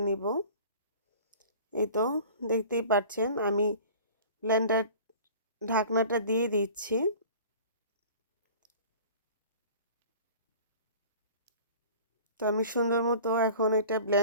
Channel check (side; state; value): both; inverted; correlation -0.44